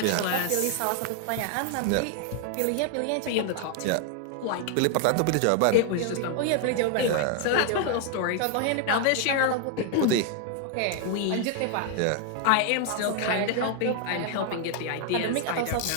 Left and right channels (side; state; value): both; different; correlation 0.00